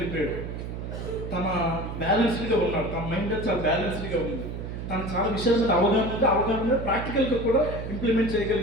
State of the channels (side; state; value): right; noise; hum, 7 dB below the sound